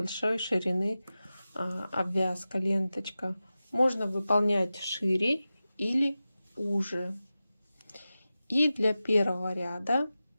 ширины обвязка, ленточка. Можно выполнять шире или уже. И для 1-го ряда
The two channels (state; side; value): inverted; both; correlation -0.94